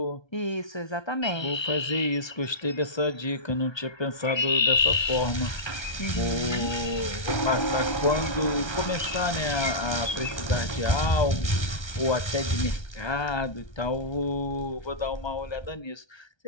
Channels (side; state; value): right; late; 1.3 ms